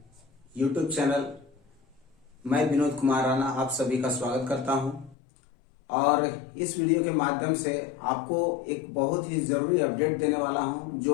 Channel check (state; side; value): drops out; right; at 5.2 s